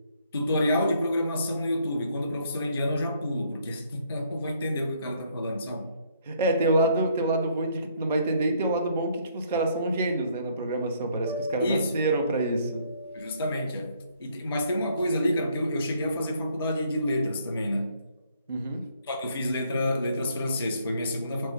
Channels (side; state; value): both; inverted; correlation -0.67